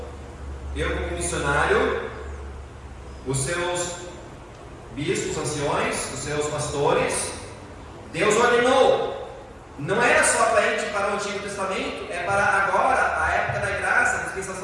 eu como missionário, os seus bispos, anciões, os seus pastores, Deus ordenou. Não era só para o Antigo Testamento, é para agora, a época da graça, a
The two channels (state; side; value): identical; both; correlation 1.00